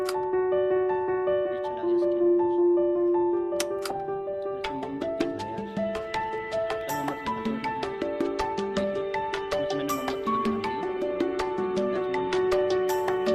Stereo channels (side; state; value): both; identical; correlation 1.00